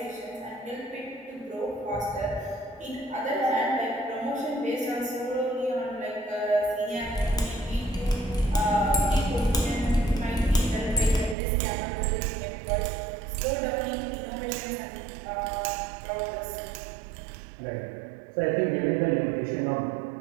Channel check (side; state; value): left; drops out; at 11.4 s